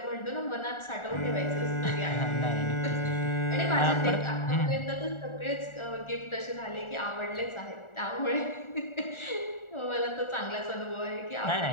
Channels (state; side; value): late; right; 1.4 ms